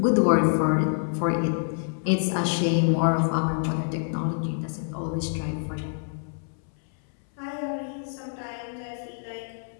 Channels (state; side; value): silent; right; 61 dB below the other